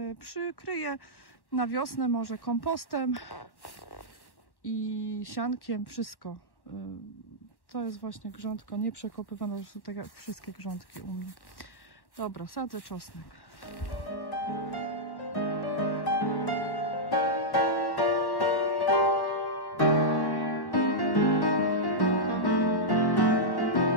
przykryję na wiosnę może kompostem i siankiem, wszystko. To jest właśnie grządka nieprzekopywana, to są tak jak wszystkie grządki u mnie. Dobra, sadzę czosnek.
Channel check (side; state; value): right; late; 1.1 ms